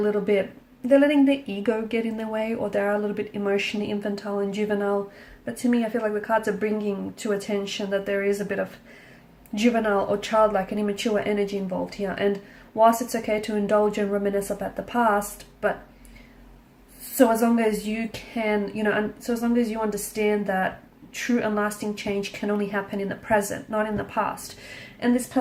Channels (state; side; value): identical; both; correlation 1.00